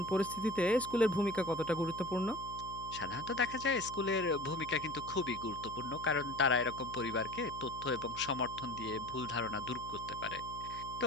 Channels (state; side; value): noise; left; hum, 15 dB below the sound